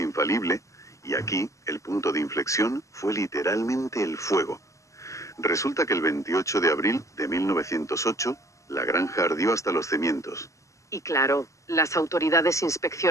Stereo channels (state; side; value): late; right; 0.15 ms